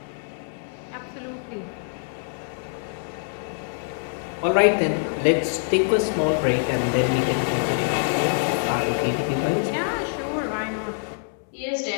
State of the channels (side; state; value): right; silent; digital silence